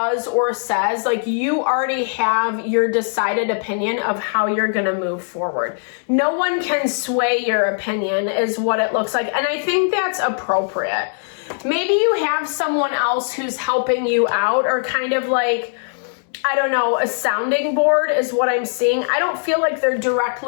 or says, like you already have your decided opinion of how you're going to move forward. No one can sway your opinion is what it looks like. And I think that's appropriate. Maybe you have someone else who's helping you out, or kind of like, I don't know, a sounding board is what I'm seeing. I don't feel like they're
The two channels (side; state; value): right; silent; digital silence